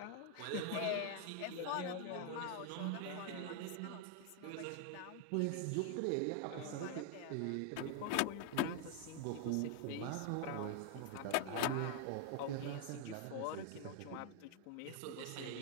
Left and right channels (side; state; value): both; different; correlation 0.00